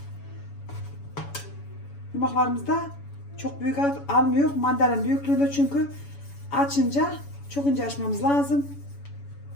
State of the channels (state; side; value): late; right; 7.1 ms